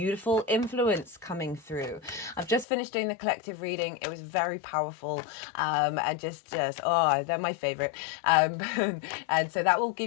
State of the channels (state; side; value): drops out; right; at 2.7 s